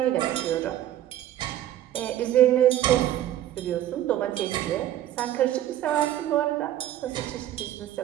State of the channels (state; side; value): quieter; left; 12.5 dB